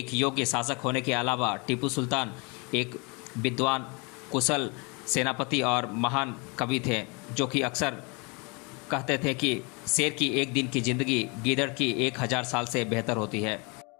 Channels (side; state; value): right; quieter; 30.7 dB